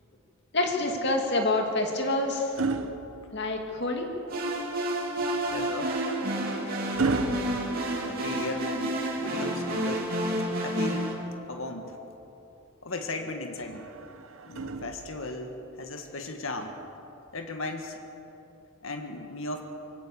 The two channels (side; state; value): both; normal; correlation 0.16